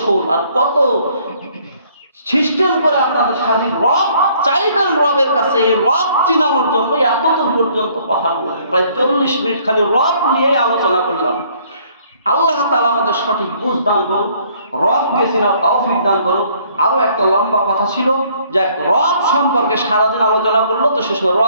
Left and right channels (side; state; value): both; inverted; correlation -0.62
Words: আর কত সিস্টেম করে আপনাদের সাথে রব চাইবেন রবের কাছে। এই রব চিনানোর জন্য এতদূর পর্যন্ত কথা বললাম, প্রায় 40 মিনিট খালি রব নিয়ে আলোচনা করলাম। আল্লাহ তাআলা আমাদের সঠিক বুঝ দান করুন, রবকে চিনার তৌফিক দান করুন। আরো একটা লম্বা কথা ছিল যে রব সম্পর্কে সারাদিন আলোচনা করলো, তো শেষ